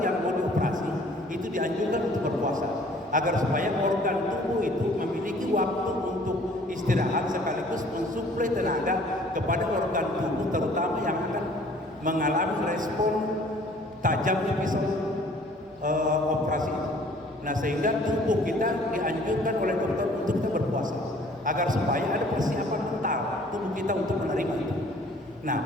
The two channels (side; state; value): both; normal; correlation 0.55